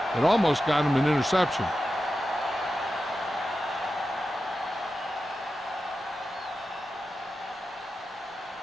it almost got him an interception.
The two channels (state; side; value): normal; both; correlation 0.91